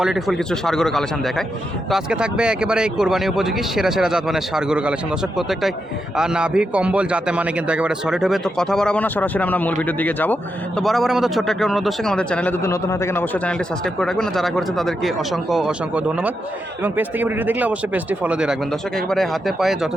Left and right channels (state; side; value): normal; both; correlation 0.85